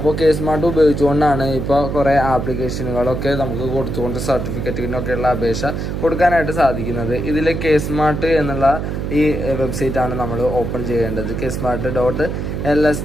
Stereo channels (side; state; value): right; noise; hum, 3 dB below the sound